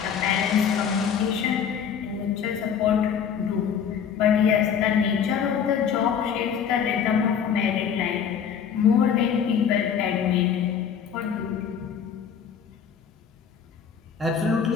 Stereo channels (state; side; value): quieter; right; 7.6 dB